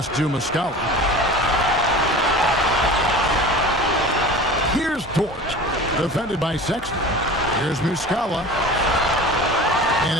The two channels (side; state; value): both; normal; correlation 0.38